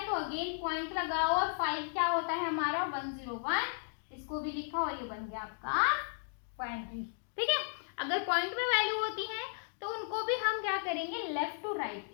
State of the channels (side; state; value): right; silent; digital silence